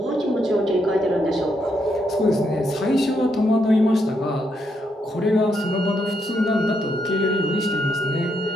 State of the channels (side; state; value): both; normal; correlation 0.78